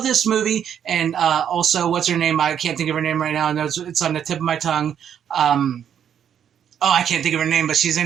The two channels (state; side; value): quieter; left; 8.9 dB